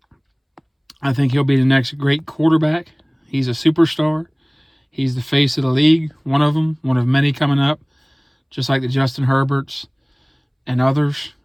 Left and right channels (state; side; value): identical; both; correlation 1.00